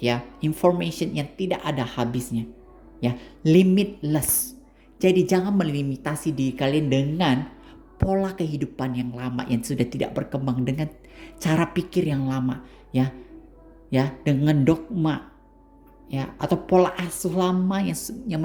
ya, information yang tidak ada habisnya, ya, limitless. Jadi jangan melimitasi diri kalian dengan pola kehidupan yang lama yang sudah tidak berkembang, dengan cara pikir yang lama, ya, dengan dogma, ya, atau pola asuh lama yang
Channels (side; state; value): both; identical; correlation 1.00